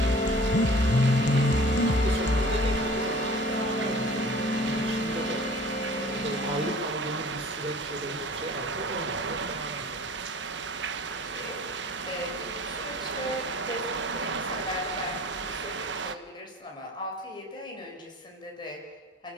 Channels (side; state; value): both; normal; correlation 0.46